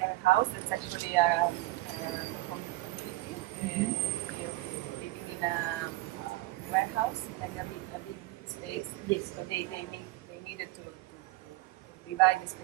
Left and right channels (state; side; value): quieter; left; 18.6 dB